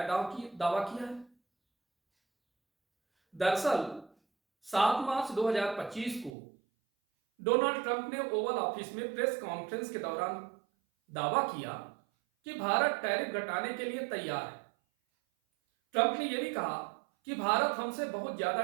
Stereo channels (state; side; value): drops out; left; at 6.4 s